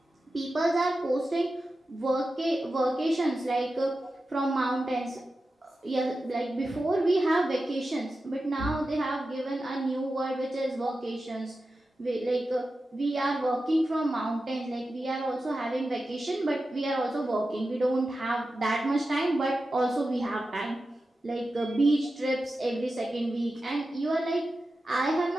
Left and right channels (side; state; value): both; normal; correlation 0.92